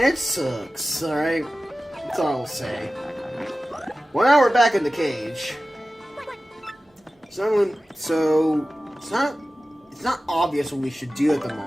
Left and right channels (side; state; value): both; normal; correlation 0.95